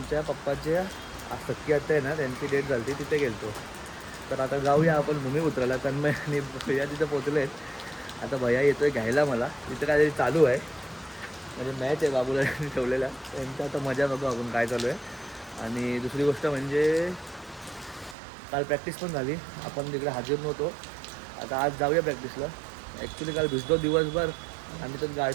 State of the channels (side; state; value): left; drops out; at 18.2 s